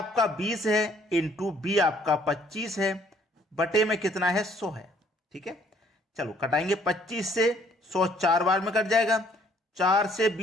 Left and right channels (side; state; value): both; normal; correlation 0.62